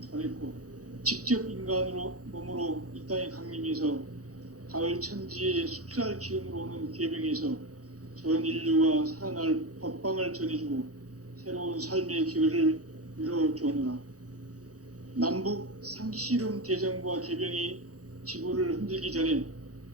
전했고 직접 인간으로 몸으로 이 땅에 강림해서 가을 천지의 숫살 기운으로 오는 계병에서 전 인류가 살아날 법방을 전해주고 새로운 삶의 기회를 열어주오노라. 남북 상씨름 대전과 계병이 지구를 흔들기 전에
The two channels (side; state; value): left; late; 0.66 ms